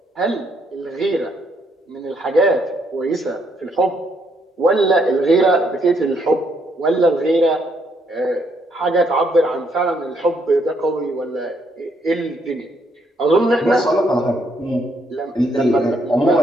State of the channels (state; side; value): normal; both; correlation 0.72